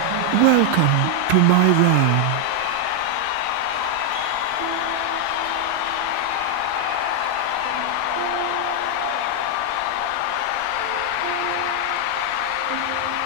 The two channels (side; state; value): both; different; correlation 0.00